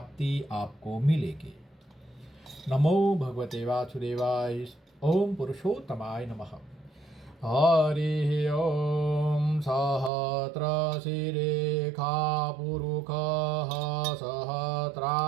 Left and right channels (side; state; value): left; drops out; at 10.1 s